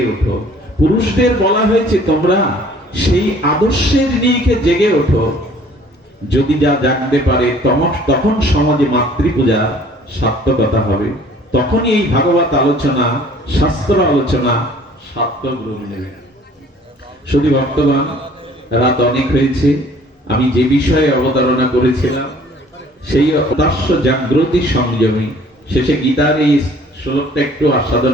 ওঠো। পুরুষদের বলা হয়েছে, তোমরা সেই আদর্শের নিরিখে জেগে ওঠো। যদি যা জাগতে পারে, তখন সমাজে মাতৃপূজা সার্থকতা হবে। তখনই এই ভাগবত আলোচনা, শাস্ত্র আলোচনা সার্থক রূপ নেবে। শুধু ভক্তগণ, রাত অনেক হয়েছে। আমি যে বিষয়ে অবতারণা করেছিলাম, সেই অদাস্য জাগ্রতি সংযমী, শেষে গীতার এই শ্লোকটা একটু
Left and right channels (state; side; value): normal; both; correlation 0.54